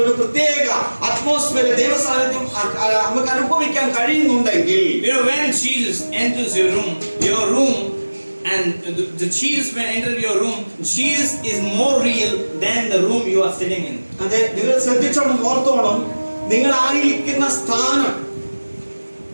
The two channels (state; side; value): inverted; both; correlation -1.00